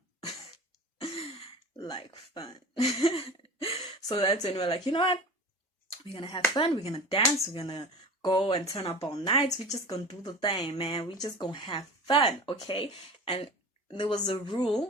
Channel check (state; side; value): normal; both; correlation 0.36